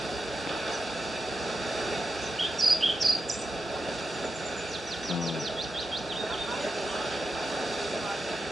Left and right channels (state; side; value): normal; both; correlation 0.88